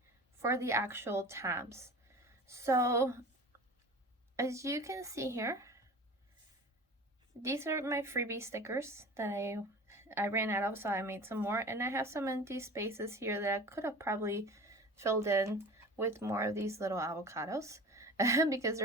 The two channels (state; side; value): normal; both; correlation 0.37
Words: for the actual tabs. So as you can see here, these are my freebie stickers that I ran out of, so I made some more, and I have some empty spaces here that I could have probably filled in with more of these little avocados because